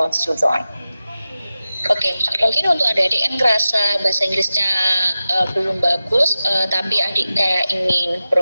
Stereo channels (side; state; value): both; inverted; correlation -0.93